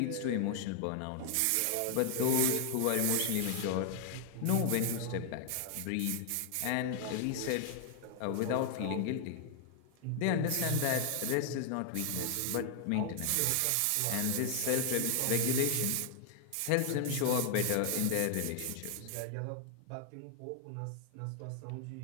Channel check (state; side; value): different; both; correlation 0.00